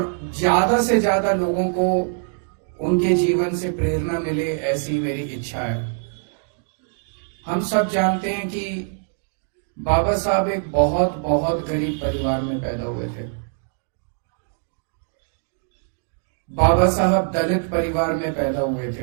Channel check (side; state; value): left; silent; 63 dB below the other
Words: ज्यादा से ज्यादा लोगों को उनके जीवन से प्रेरणा मिले, ऐसी मेरी इच्छा है। हम सब जानते हैं कि बाबा साहब एक बहुत बहुत गरीब परिवार में पैदा हुए थे। बाबा साहब दलित परिवार में पैदा हुए